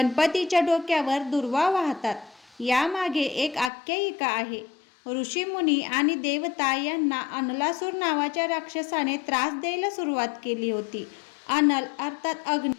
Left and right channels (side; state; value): right; drops out; at 3.7 s